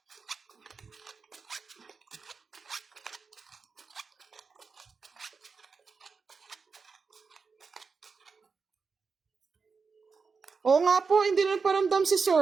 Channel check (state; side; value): quieter; left; 5.0 dB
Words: Oo nga po, hindi na paramdam si